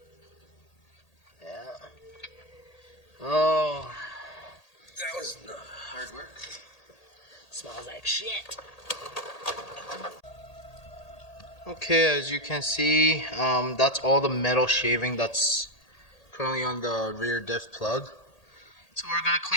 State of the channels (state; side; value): late; right; 1.8 ms